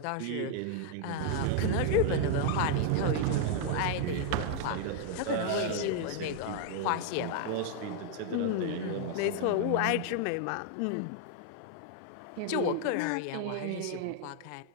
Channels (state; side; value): different; both; correlation 0.00